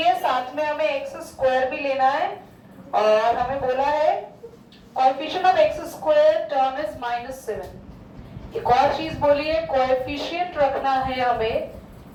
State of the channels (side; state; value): both; identical; correlation 1.00